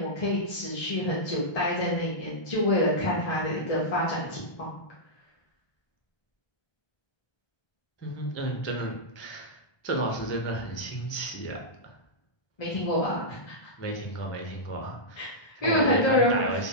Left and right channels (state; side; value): late; right; 1.2 ms